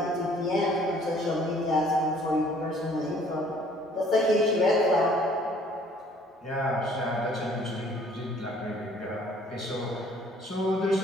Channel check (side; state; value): both; normal; correlation 0.58